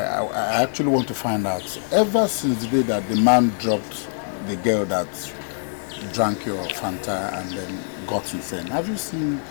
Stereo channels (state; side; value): silent; right; digital silence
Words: actually want to find out, ever since the day that the man dropped the girl that drank your Fanta and then got insane, have you seen